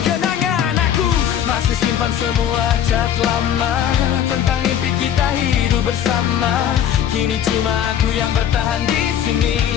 kenangan. Aku masih simpan semua chat lama tentang mimpi kita hidup bersama. Kini cuma aku yang bertahan di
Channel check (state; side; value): quieter; right; 9.7 dB